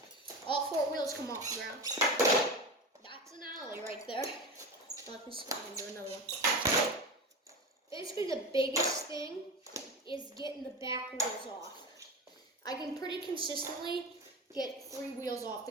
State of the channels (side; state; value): both; normal; correlation 0.26